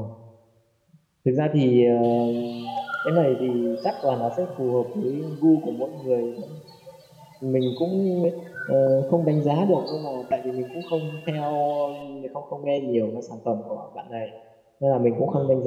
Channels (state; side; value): identical; both; correlation 1.00